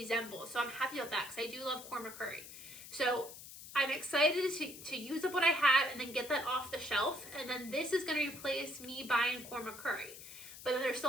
So I'm happy about that because I do love korma curry. So I'm excited to use up what I have and then get that off the shelf. And then this is going to replace me buying korma curry. But then there's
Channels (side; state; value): left; noise; hiss, 14 dB below the sound